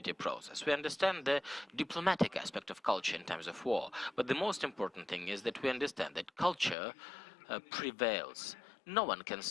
process, we understand the diplomatic aspect of culture in times of war, but the most important thing is that we understand that culture prevails. No one can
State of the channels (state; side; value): drops out; right; at 6.8 s